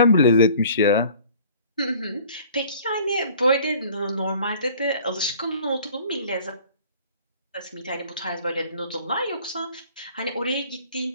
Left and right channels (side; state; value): both; inverted; correlation -0.50